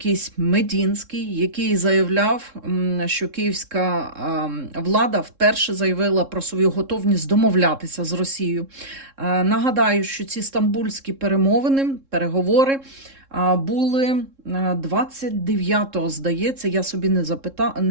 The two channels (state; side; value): late; left; 3.7 ms